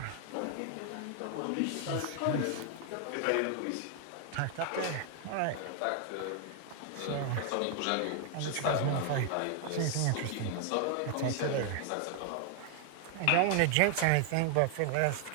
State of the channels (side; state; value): both; different; correlation 0.00